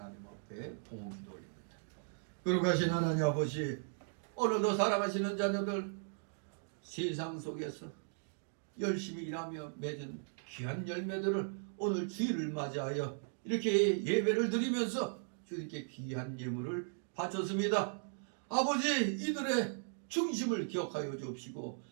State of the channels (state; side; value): silent; left; digital silence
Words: 앞에 봉헌 기도 올립니다. 거룩하신 하나님 아버지, 오늘도 사랑하시는 자녀들 세상 속에서 열심히 일하며 맺은 귀한 열매들을 오늘 주일을 맞이하여 이렇게 예배를 드리면서 주님께 귀한 예물을 바쳤습니다. 아버지, 이들의 중심을 기억하여 주옵시고